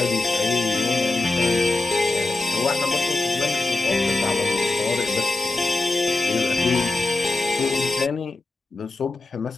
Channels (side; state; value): right; quieter; 3.1 dB